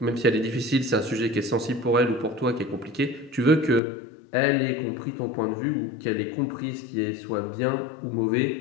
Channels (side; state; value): right; drops out; at 3.8 s